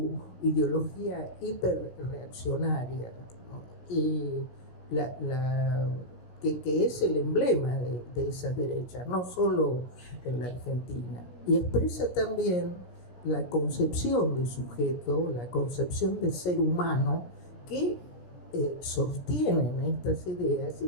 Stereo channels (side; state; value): right; late; 16 ms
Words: ideología hiperreaccionaria, ¿no? Y que es el emblema de esa derecha, no solo en la Argentina. Y expresa también la concepción de sujeto, la concepción de ser humano que sostienen estas ideas y